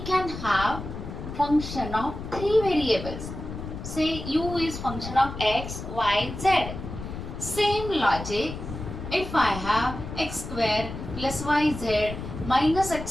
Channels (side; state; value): left; noise; rumble, 8 dB below the sound